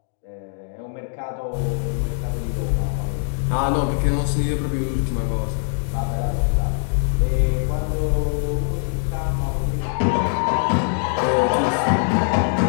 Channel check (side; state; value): right; silent; digital silence